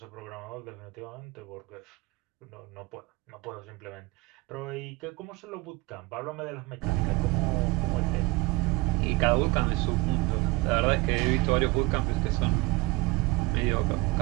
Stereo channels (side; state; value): left; quieter; 22.8 dB